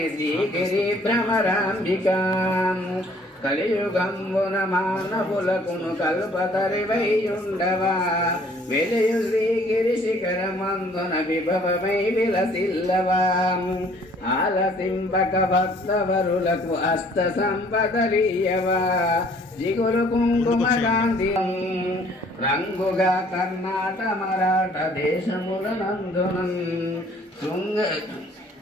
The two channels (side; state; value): both; normal; correlation 0.58